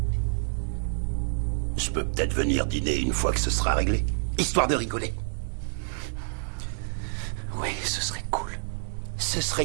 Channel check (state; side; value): silent; left; 59 dB below the other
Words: Je peux peut-être venir dîner une fois que ce sera réglé, histoire de rigoler. Oui, ce serait cool. Ce